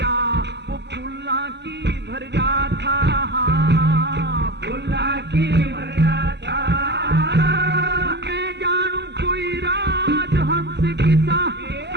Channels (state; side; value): late; left; 0.50 ms